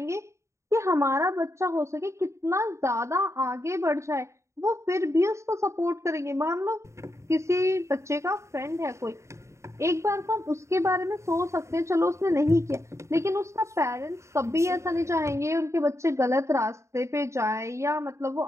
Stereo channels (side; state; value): left; late; 0.14 ms